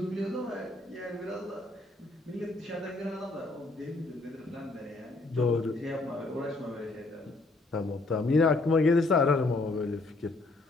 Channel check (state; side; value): quieter; right; 3.1 dB